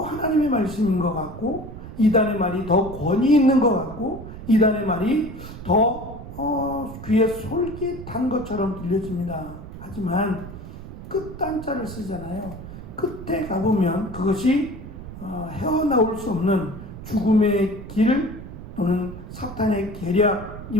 하나님의 말씀인 것 같고, 이단의 말이 더 권위 있는 것 같고, 이단의 말이 더 귀에 솔깃한 것처럼 들려집니다. 하지만 끝단자를 쓰잖아요. 끝에 가보면 그것이 헤어나올 수 없는 죽음의 길 또는 사탄의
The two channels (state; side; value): noise; right; rumble, 12 dB below the sound